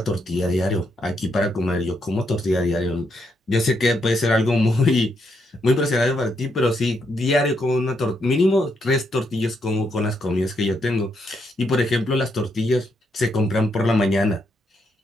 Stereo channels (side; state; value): both; normal; correlation 0.78